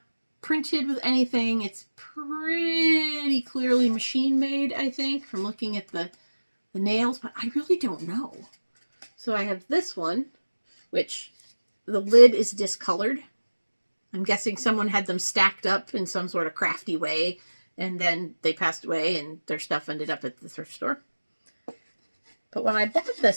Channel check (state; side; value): inverted; both; correlation -1.00